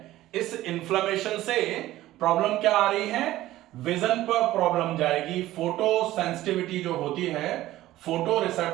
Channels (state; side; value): quieter; left; 15.4 dB